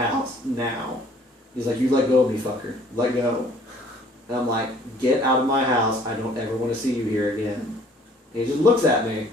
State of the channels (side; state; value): both; normal; correlation 0.56